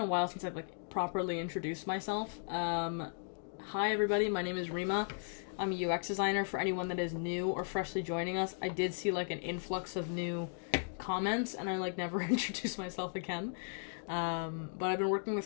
while since I've like properly introduced myself, hi everybody, my name is Reema. I'm a UX designer. For anyone that is new or freshly joining us, I did see like an influx of new comments, and I like never introduced myself again. But I've been working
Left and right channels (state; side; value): silent; right; digital silence